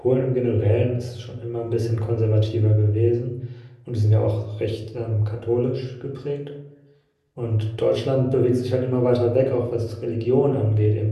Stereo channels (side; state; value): both; identical; correlation 1.00